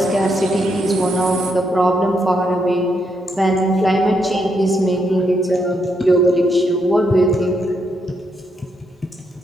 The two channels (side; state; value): both; normal; correlation 0.78